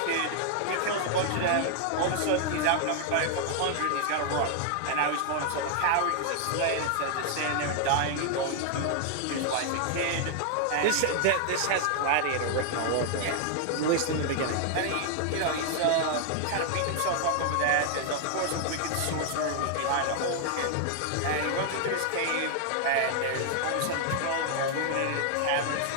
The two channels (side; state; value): both; different; correlation 0.00